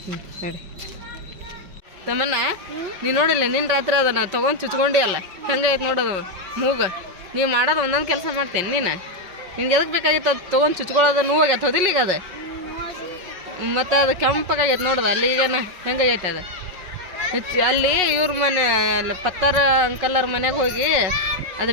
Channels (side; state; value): left; late; 5.4 ms